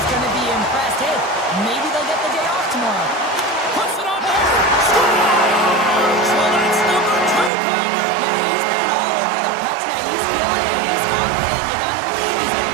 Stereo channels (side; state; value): left; drops out; at 7.5 s